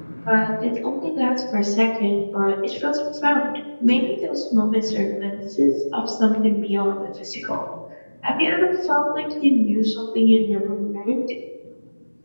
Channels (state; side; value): inverted; both; correlation -1.00